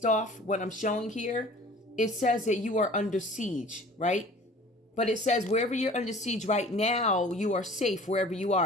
off what I'm showing here. It says that you are under siege, right? But it says wherever you're under siege right now, you are safe wherever you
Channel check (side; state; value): both; normal; correlation 0.47